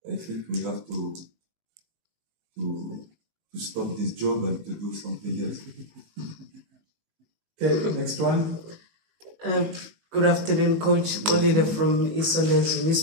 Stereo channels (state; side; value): late; left; 18 ms